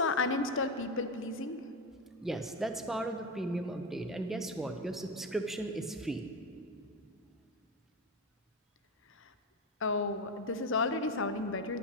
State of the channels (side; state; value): both; normal; correlation 0.16